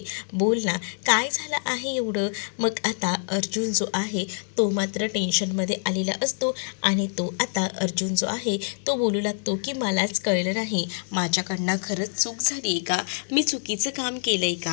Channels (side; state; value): right; silent; 59 dB below the other